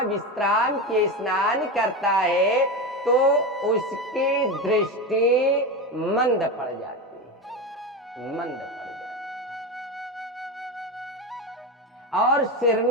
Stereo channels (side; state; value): both; normal; correlation 0.19